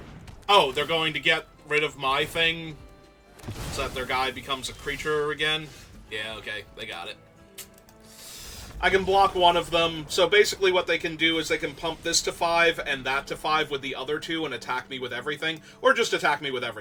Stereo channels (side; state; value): both; identical; correlation 1.00